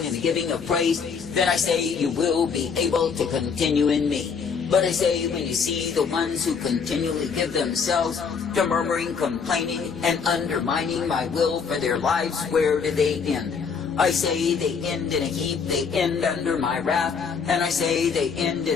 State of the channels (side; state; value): right; quieter; 5.9 dB